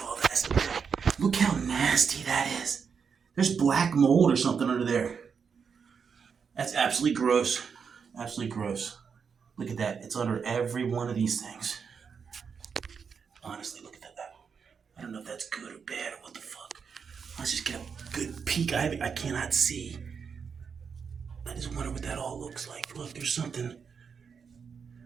all this. Look how nasty that is. There's black mold or something under there. That's absolutely gross. Absolutely gross. Look at that. It's under every one of these things. Honestly, look at that. I don't know if that's good or bad or what the fuck. Let's just get a good peek. I cannot see. I just wonder what that all looks like. Look, there's something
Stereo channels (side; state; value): left; quieter; 6.2 dB